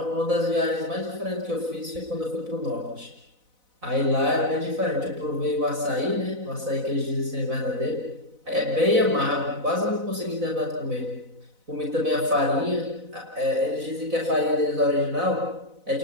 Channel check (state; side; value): late; left; 4.0 ms